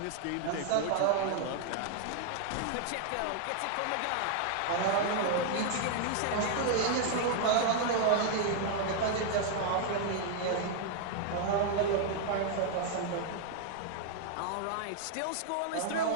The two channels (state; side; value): different; both; correlation 0.00